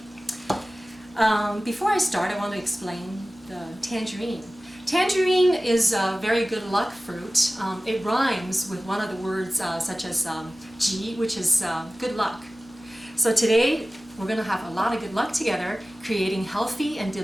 Before I start, I want to explain the tangerine. Tangerine is a very good luck fruit. It rhymes with one of the words such as ji, which is good luck. So today we're going to have a lot of good luck together, creating healthy and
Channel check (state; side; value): normal; both; correlation 0.97